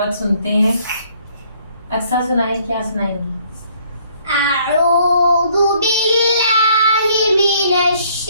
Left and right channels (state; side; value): inverted; both; correlation -0.63